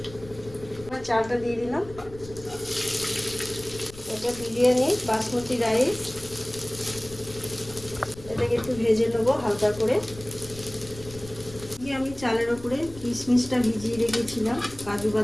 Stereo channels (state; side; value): noise; left; rumble, 17 dB below the sound